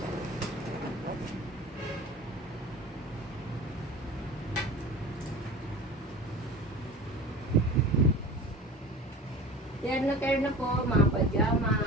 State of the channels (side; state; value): both; normal; correlation 0.37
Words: Terno po, mga